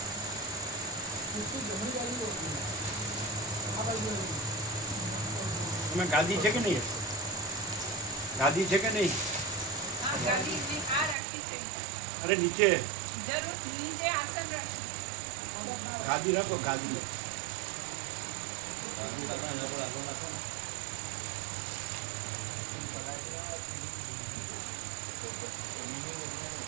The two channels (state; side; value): drops out; left; at 11.2 s